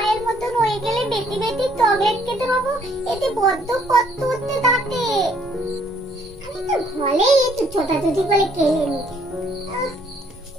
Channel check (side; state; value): both; normal; correlation 0.65